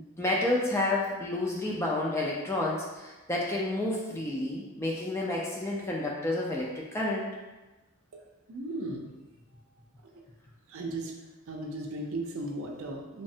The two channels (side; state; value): both; normal; correlation 0.41